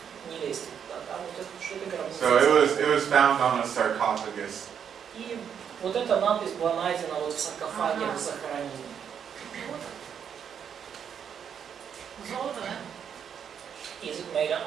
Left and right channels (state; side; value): quieter; left; 7.9 dB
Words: не лезьте туда. Да, вот это, что это гробница. So it was found on a sarcophagus. И вот эта надпись была найдена вот в саркофаге в захоронении. Золото, да? Is it made